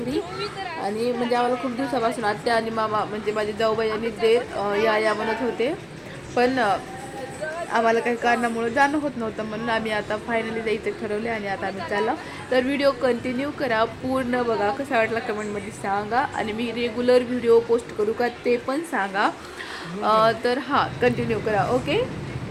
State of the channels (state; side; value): identical; both; correlation 1.00